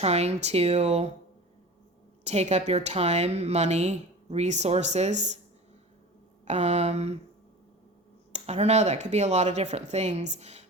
to take up your time, money, resources. I don't know, that could be a lot of different things,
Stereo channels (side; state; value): both; normal; correlation 0.36